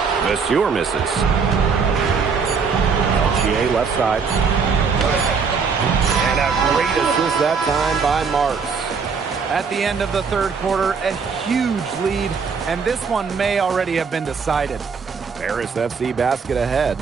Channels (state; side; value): quieter; left; 5.5 dB